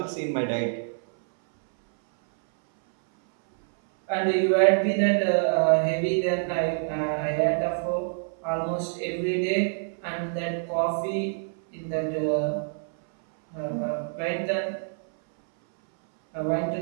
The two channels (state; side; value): silent; left; 61 dB below the other